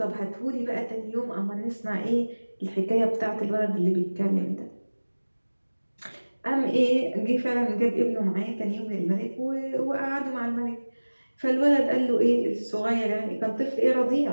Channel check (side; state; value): both; inverted; correlation -1.00